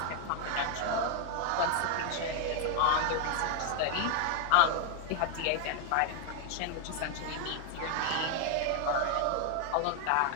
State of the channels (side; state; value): both; different; correlation 0.01